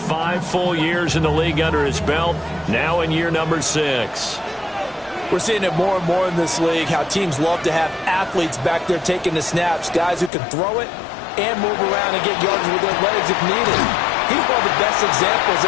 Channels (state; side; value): drops out; right; at 10.3 s